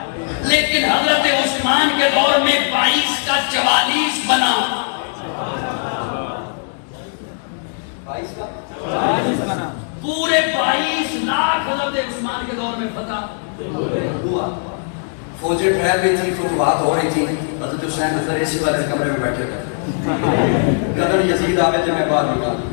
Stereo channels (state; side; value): silent; right; 66 dB below the other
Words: لیکن حضرت عثمان کے دور میں 22 کا 44 بنا، 22 کا 44 بنا، پورے 22 لاکھ حضرت عثمان کے دور میں فتح ہوا۔ فوجیں ٹھہر رہی تھی، فتوحات ہو رہی تھی، حضرت حسین اندر اسی بات کمرے میں بیٹھے ہوئے، قدر یزید آوے تو میں باہر نکلا،